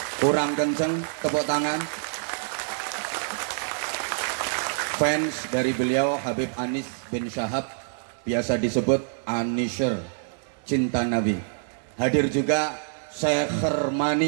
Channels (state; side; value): silent; left; 61 dB below the other